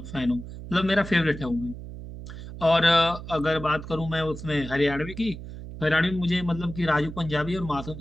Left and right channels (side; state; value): right; noise; hum, 11 dB below the sound